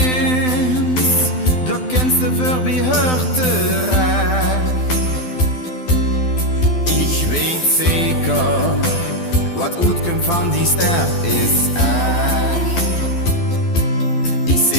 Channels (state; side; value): late; right; 12 ms